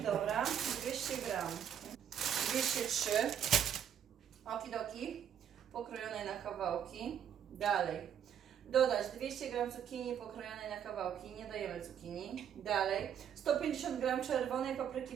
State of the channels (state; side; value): quieter; left; 9.1 dB